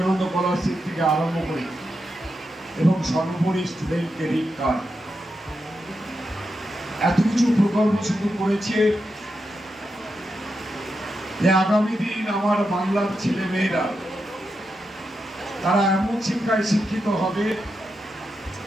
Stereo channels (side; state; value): both; normal; correlation 0.87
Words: scholarship থেকে আরম্ভ করে এবং সর্বোপরি স্টুডেন্ট ক্রেডিট কার্ড, এত কিছু প্রকল্প শুরু করেছে যে আগামী দিন আমার বাংলার ছেলে মেয়েরা তারা এমন শিক্ষায় শিক্ষিত হবে